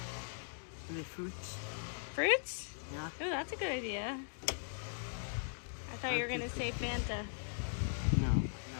Any fruits? Fruits? Yeah. Oh, that's a good idea. I thought you were gonna say Fanta. No, I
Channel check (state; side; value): silent; right; digital silence